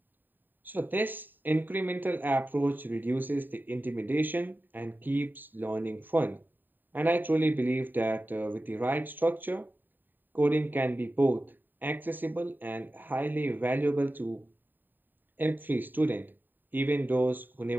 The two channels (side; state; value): left; late; 0.091 ms